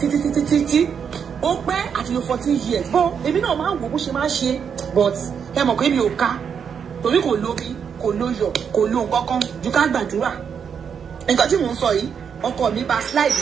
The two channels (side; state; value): left; quieter; 7.1 dB